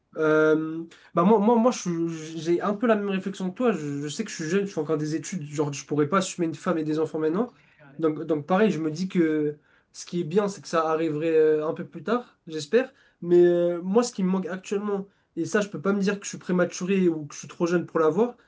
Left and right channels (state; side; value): identical; both; correlation 1.00